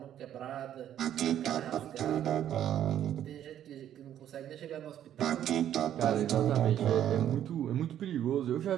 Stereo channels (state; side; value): quieter; left; 10.8 dB